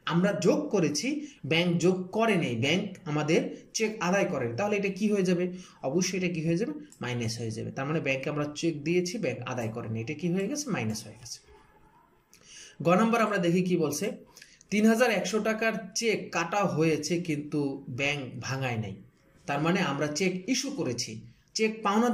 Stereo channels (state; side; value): identical; both; correlation 1.00